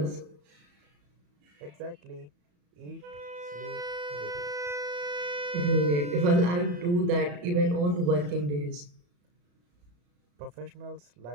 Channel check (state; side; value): late; left; 34 ms